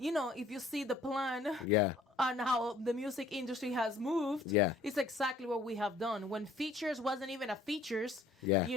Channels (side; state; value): right; quieter; 3.1 dB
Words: if you see the plan Yeah. on how the music industry has moved, Yeah. it's exactly what we have done. When features wasn't even a features, Yeah.